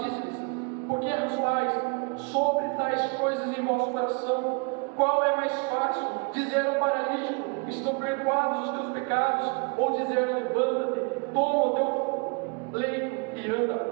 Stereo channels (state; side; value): quieter; left; 33.4 dB